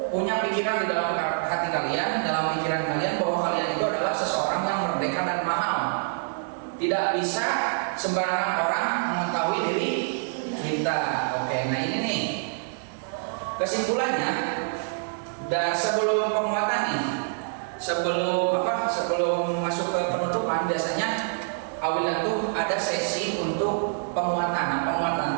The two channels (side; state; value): left; silent; 61 dB below the other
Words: punya pikiran di dalam hati kalian, dalam pikiran kalian bahwa kalian itu adalah seseorang yang merdeka dan mahal. Tidak bisa sembarangan orang mengetahui diri kita. Oke, nah ini nih kesimpulannya. Dan sebelum penguatan nih, sebelum masuk ke penutupan, biasanya awilan tuh ada sesi untuk penguatan. Nah, penguatan